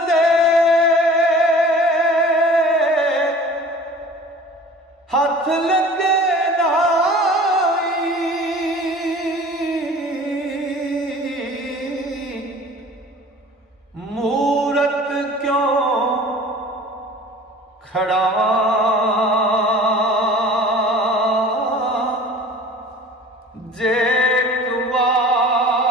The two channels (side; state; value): both; normal; correlation 0.44